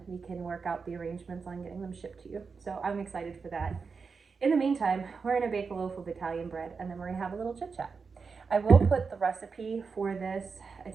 we can work out the arrangements on getting them shipped to you. So I'm excited for that. In the meantime, we're going to bake a loaf of Italian bread, and then we're going to have a little chit chat. I will put the recipe for this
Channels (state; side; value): quieter; left; 5.1 dB